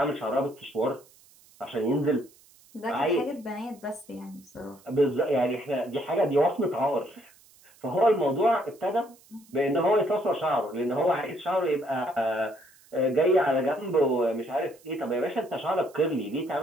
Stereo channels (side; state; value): right; noise; hiss, 28 dB below the sound